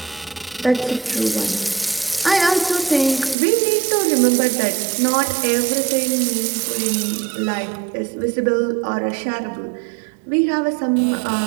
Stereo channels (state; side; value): drops out; left; at 3.4 s